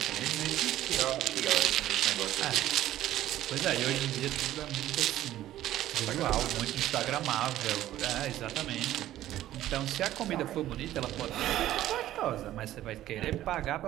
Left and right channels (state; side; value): quieter; left; 13.6 dB